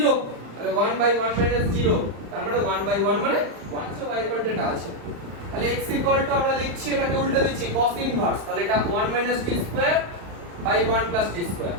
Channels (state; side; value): late; left; 35 ms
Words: তাহলে 1 বাই 1 মাইনাস 0 তার মানে 1 বাই 1 মানে 1 সো y ইকুয়াল টু এটা আছে তাহলে x ইকুয়াল টু আমরা লিখছি এটাকে উল্টা দিচ্ছি cos ইনভার্স তাহলে এটা 1 minus t square by 1 plus t square